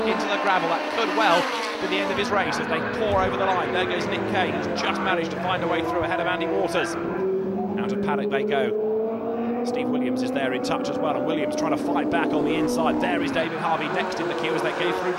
into the gravel. That could well be the end of his race as they pour over the line. There goes Nick Kay, who's just managed to find a way through ahead of Andy Waters. Out of paddock they go. Steve Williams is there in touch as well, and Williams trying to fight back on the inside. There is David Harvey next in the queue as they go through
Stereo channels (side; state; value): both; identical; correlation 1.00